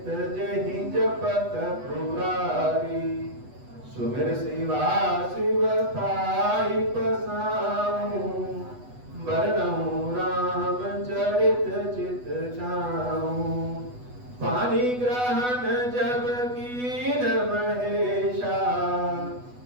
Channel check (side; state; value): left; late; 8.1 ms